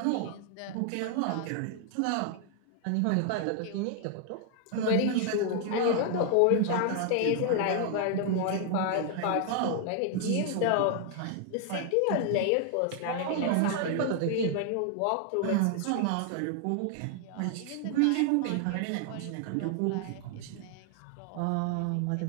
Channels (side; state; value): both; different; correlation 0.00